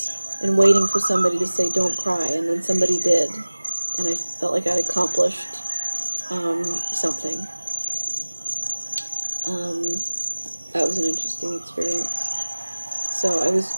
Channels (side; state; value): both; inverted; correlation -1.00